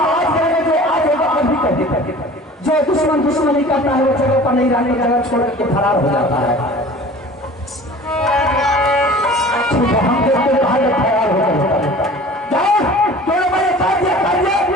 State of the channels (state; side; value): normal; both; correlation 0.43